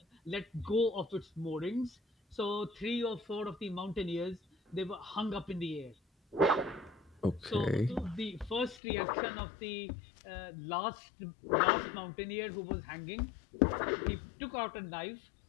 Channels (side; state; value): right; drops out; at 8.8 s